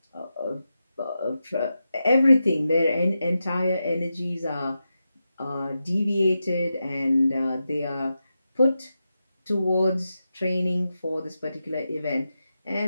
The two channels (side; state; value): both; inverted; correlation -0.89